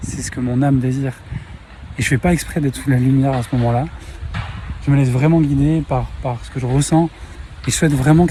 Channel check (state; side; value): identical; both; correlation 1.00